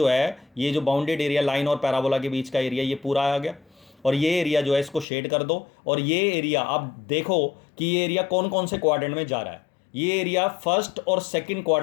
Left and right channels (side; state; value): right; drops out; at 5.1 s